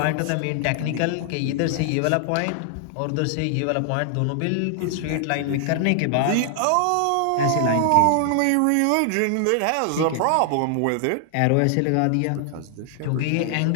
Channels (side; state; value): both; different; correlation 0.00